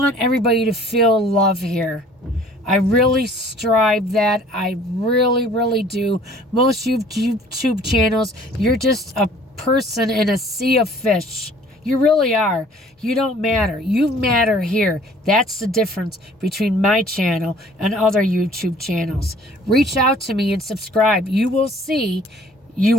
everybody to feel love here. I really strive that. I really, really do. Most YouTube channels, you're just a person in a sea of fish. You really are. You don't matter. You matter here. That's the difference between my channel and other YouTube channels. Reach out to me and subscribe. You will see. You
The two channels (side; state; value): both; normal; correlation 0.53